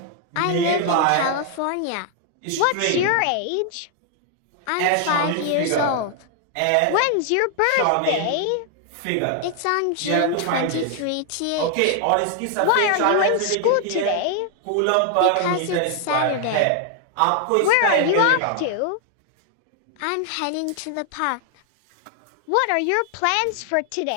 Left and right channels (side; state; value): both; different; correlation 0.00